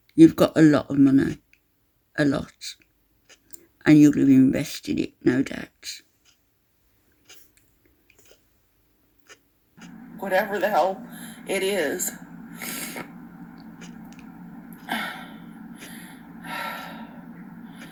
You've got a lot of money, a lot, and you'll have invested it, no doubt. Whatever the hell it is.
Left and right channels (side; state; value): both; identical; correlation 1.00